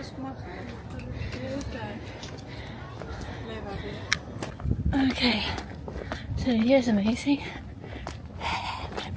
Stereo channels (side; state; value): both; identical; correlation 1.00